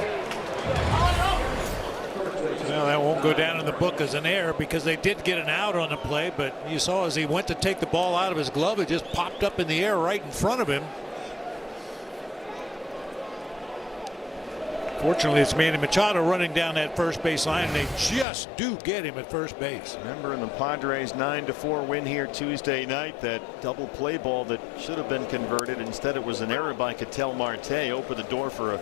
Well, that won't go down in the book as an error because they did get an out on the play, but you saw as he went to take the ball out of his glove, it just popped up in the air right in front of him. Fortunately, it's Manny Machado running down that first base line, and they just do get him at first base. Remember in the Padres 9-4 win here Tuesday night, that double play ball that should have been converted. Instead, it was an error by Ketel Marte. Opened the door for a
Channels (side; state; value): right; drops out; at 18.2 s